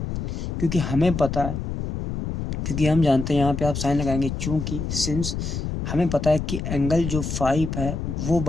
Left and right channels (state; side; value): noise; left; rumble, 4 dB below the sound